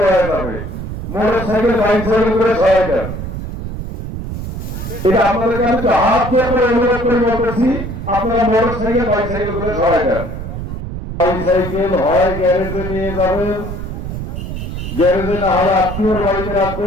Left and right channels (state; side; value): noise; right; rumble, 6 dB below the sound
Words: হয়ে যাবে। মোটর সাইকেল বাইসাইকেল করে সহায় দেন। এটা আপনাদেরকে আমি তো হাত দিয়ে করে অনুরোধ করে বলতেছি, আপনারা মোটর সাইকেল বাইসাইকেল করে সহায় দেন। বাইসাইকেল হয় গ্যারেজে নিয়ে যাবেন, গ্যারেজে না হলে আত্মীয়র বাড়িতে